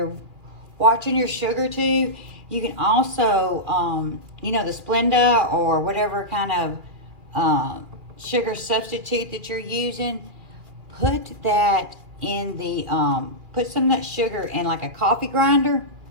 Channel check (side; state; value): left; late; 2.4 ms